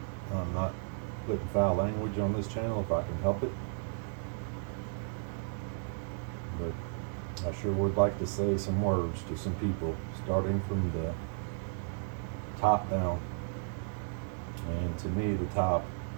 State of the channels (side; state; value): left; silent; 55 dB below the other